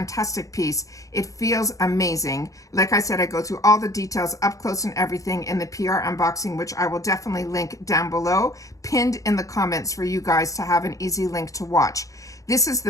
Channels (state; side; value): late; right; 0.16 ms